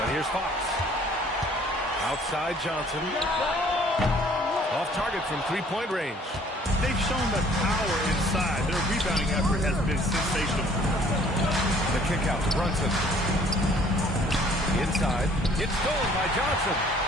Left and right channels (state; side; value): normal; both; correlation 0.57